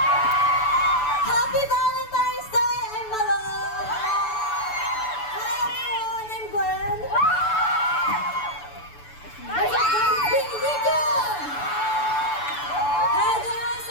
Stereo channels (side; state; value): right; late; 6.9 ms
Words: Happy Valentine's Day! I'm Malo! Hi everyone! I'm Gwen! What's up, guys? It's Big Rico! Hi, guys!